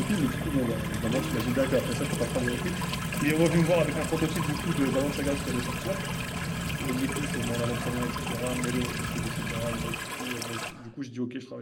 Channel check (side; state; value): both; identical; correlation 1.00